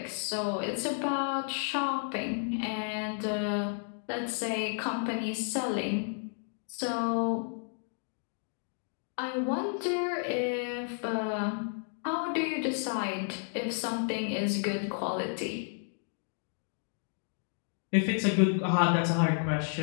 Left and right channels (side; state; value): right; silent; 56 dB below the other